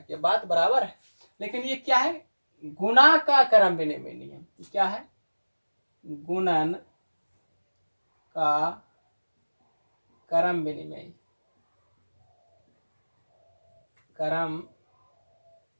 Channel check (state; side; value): inverted; both; correlation -1.00